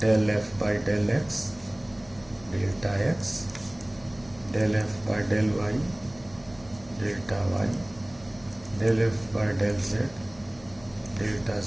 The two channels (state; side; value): noise; left; hum, 22 dB below the sound